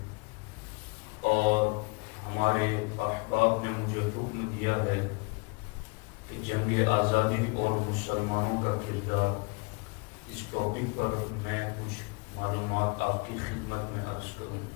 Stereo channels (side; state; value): right; quieter; 30.5 dB